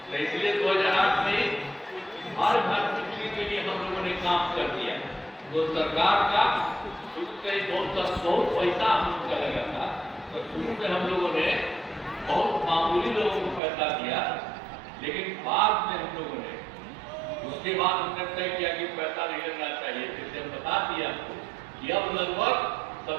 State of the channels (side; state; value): left; drops out; at 13.6 s